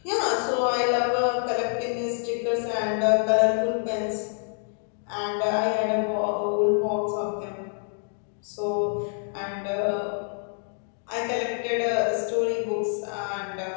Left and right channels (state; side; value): silent; right; 55 dB below the other